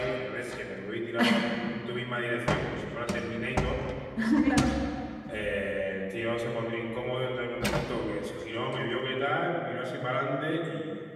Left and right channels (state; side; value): identical; both; correlation 1.00